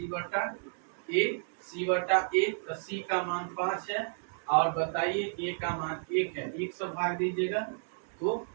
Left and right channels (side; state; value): left; silent; digital silence